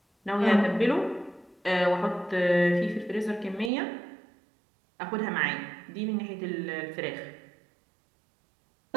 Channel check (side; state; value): left; drops out; at 3.7 s